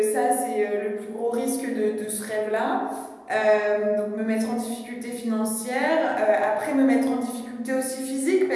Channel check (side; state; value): both; identical; correlation 1.00